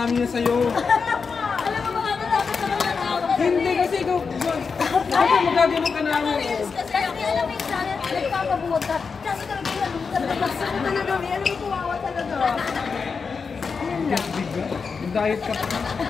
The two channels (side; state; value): right; quieter; 5.3 dB